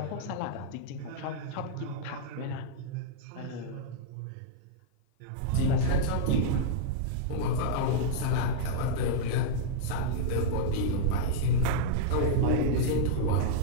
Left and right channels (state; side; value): different; both; correlation -0.02